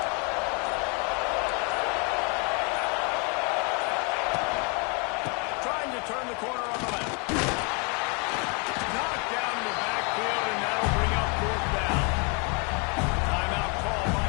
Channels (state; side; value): quieter; right; 33.3 dB